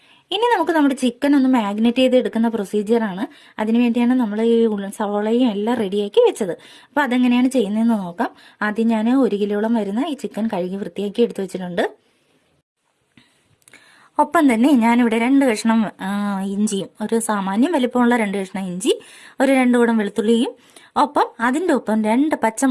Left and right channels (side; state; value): both; identical; correlation 1.00